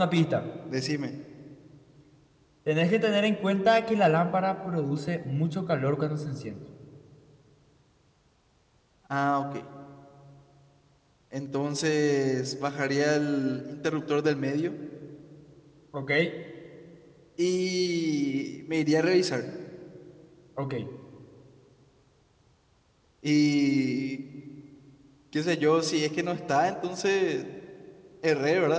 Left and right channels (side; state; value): both; identical; correlation 1.00